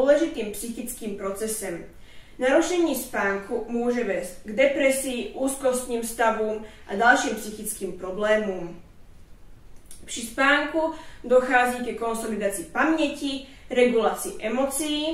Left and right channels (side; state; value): both; identical; correlation 1.00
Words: psychickým procesem. Narušení spánku může vést k depresii, úzkostním stavům a dalším psychickým problémům. Při spánku dochází ke konsolidaci paměti, regulaci